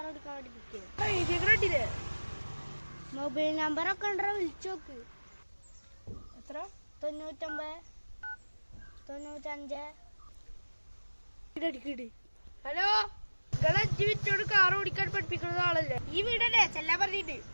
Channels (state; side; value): inverted; both; correlation -1.00